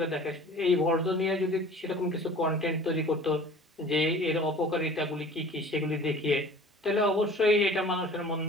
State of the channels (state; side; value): normal; both; correlation 0.45